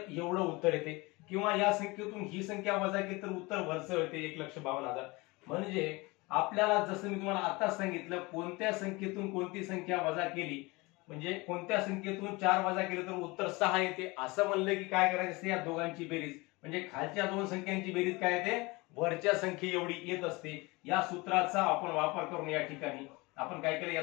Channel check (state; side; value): quieter; right; 24.1 dB